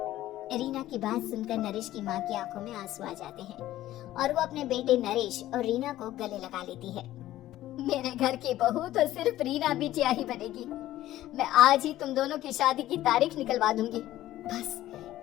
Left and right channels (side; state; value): right; quieter; 14.4 dB